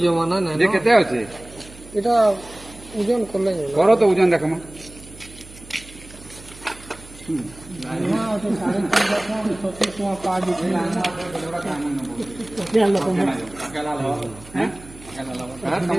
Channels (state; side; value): noise; right; hum, 19 dB below the sound